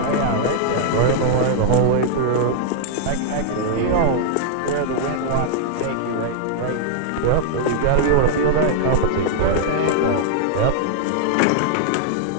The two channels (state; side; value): different; both; correlation -0.01